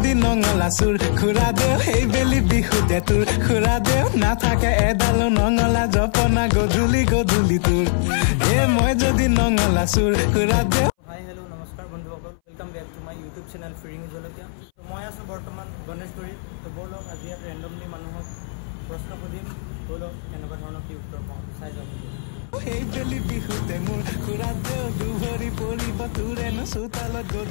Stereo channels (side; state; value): right; silent; 61 dB below the other